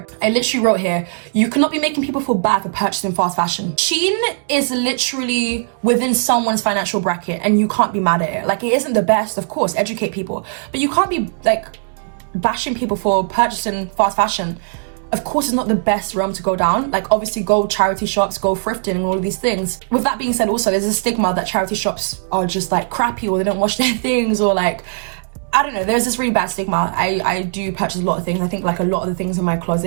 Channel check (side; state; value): left; silent; digital silence